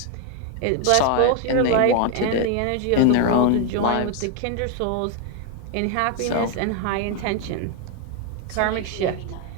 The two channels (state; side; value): different; both; correlation 0.01